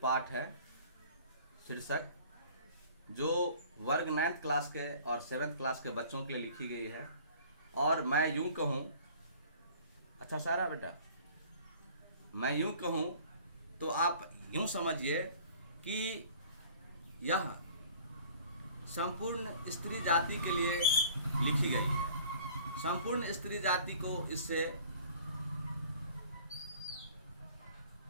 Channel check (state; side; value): inverted; both; correlation -0.50